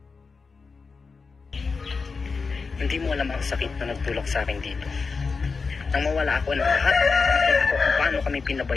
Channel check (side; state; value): right; quieter; 4.7 dB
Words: Hindi mo alam ang sakit na nagtulak sa akin dito. Nang mawala ako ng lahat, nakita ko kung paano kami